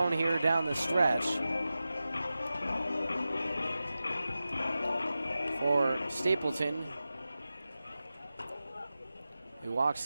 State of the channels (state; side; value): inverted; both; correlation -0.94